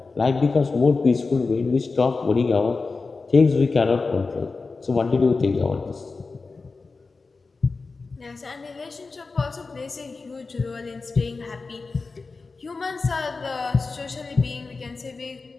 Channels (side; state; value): right; quieter; 4.1 dB